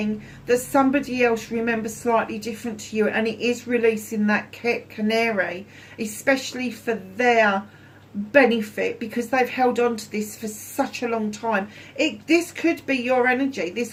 that somebody else remembers slightly different to you, and it is releasing that canary, especially for their benefit, because they've held on to this for such a long time. This could be your energy.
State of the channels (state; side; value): identical; both; correlation 1.00